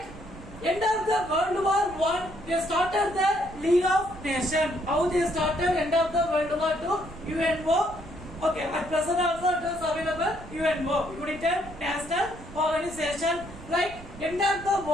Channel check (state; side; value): noise; right; rumble, 16 dB below the sound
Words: end of the World War I, they started the League of Nations. How they started end of the World War II? UNO. Okay, at present also it is available UNO, United National Organization. Like end of the